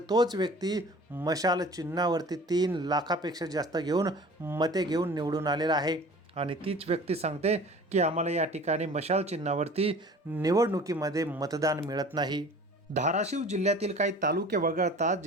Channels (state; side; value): normal; both; correlation 0.44